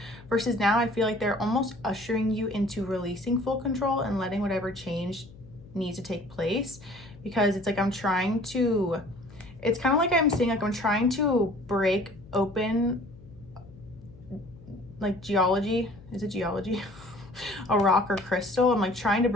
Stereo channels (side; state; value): left; noise; hum, 21 dB below the sound